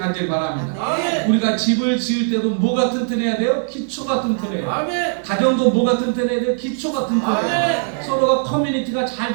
바랍니다. 아멘. 우리가 집을 지을 때도 뭐가 튼튼해야 돼요? 기초가 튼튼해요. 아멘. 가정도 뭐가 튼튼해야 돼요? 기초가 튼튼해요. 아멘. 서로가 커뮤니티가 잘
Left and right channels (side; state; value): left; silent; digital silence